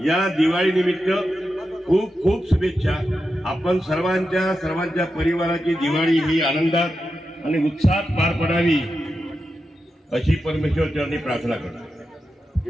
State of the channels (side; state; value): both; normal; correlation 0.89